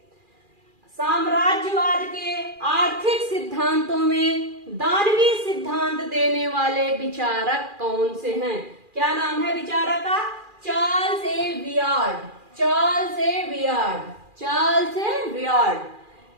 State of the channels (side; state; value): left; late; 2.4 ms